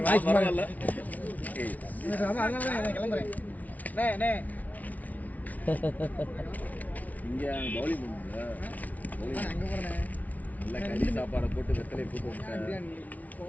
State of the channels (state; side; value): late; right; 0.073 ms